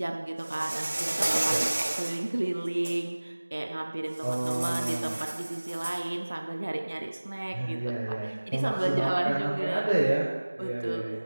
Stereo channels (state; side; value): inverted; both; correlation -1.00